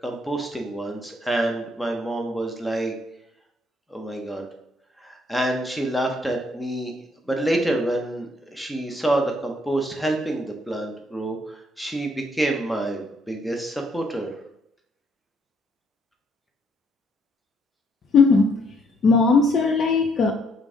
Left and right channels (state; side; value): normal; both; correlation 0.70